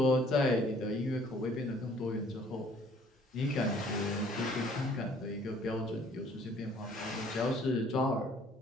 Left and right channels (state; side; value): normal; both; correlation 0.58